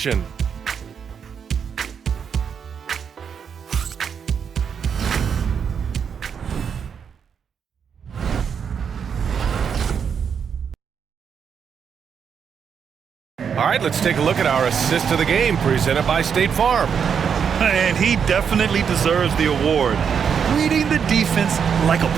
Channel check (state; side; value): quieter; left; 7.1 dB